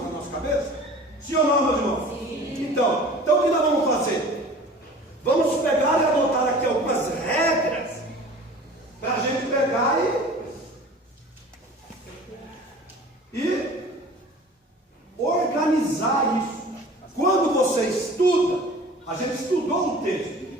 na nossa cabeça? Sim ou não, meu irmão? Sim. Então, o que nós vamos fazer? Vamos pegar e adotar aqui algumas regras, para a gente pegar e organizar isso. Quando você estuda, a gente estudou um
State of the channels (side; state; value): both; normal; correlation 0.43